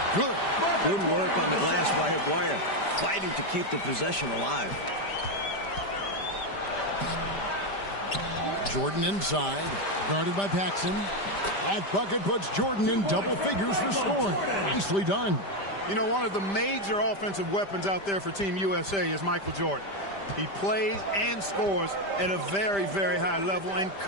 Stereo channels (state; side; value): late; right; 5.1 ms